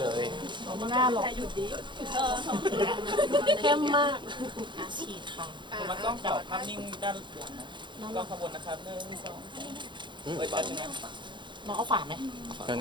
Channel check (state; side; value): late; left; 0.23 ms